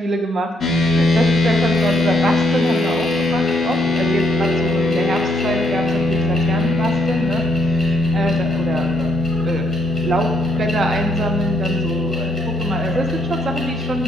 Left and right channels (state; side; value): normal; both; correlation 0.72